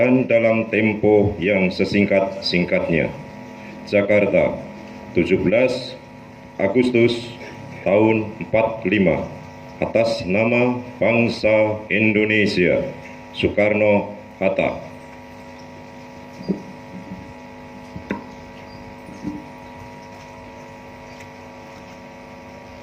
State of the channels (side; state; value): both; identical; correlation 1.00